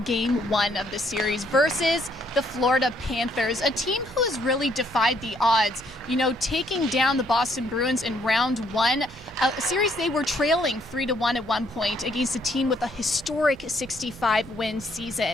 Game 1 of the series versus the Florida Panthers, a team who has really defied the odds, taking down the Boston Bruins in round 1, a series they were trailing 3-1 at one point against a team with a historic 65-win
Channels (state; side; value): normal; both; correlation 0.68